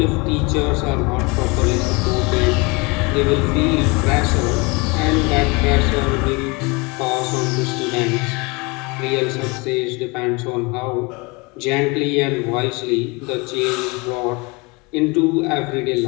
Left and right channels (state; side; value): quieter; right; 27.6 dB